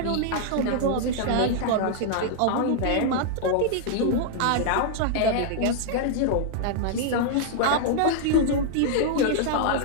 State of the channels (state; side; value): different; both; correlation -0.01